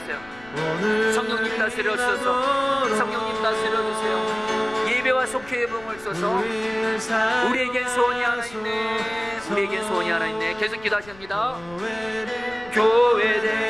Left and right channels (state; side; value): noise; left; rumble, 22 dB below the sound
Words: 성령님 다스려주소서. 성령님 다스려주세요. 예배와 속회의 부흥을 쏘서 우리에겐 소원이 하나 있네. 우리에겐 소원이 하나 있네. 계속 기도하십니다.